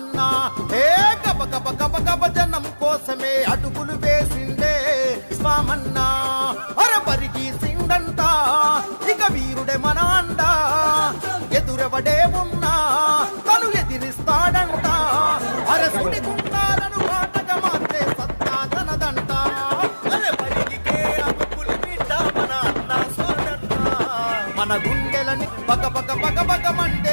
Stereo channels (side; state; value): both; inverted; correlation -1.00